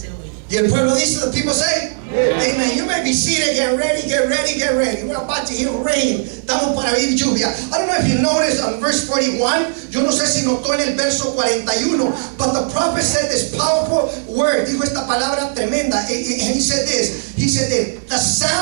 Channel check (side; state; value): left; silent; digital silence